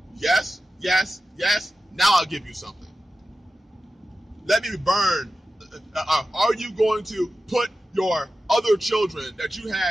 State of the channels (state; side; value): normal; both; correlation 0.93